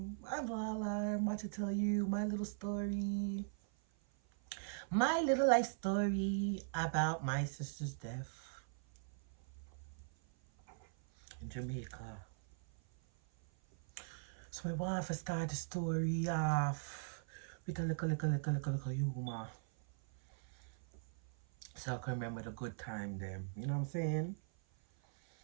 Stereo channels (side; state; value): left; silent; 51 dB below the other